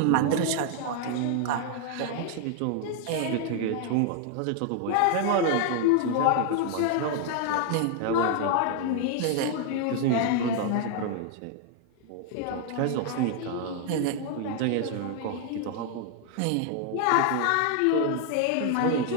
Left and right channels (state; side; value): different; both; correlation 0.00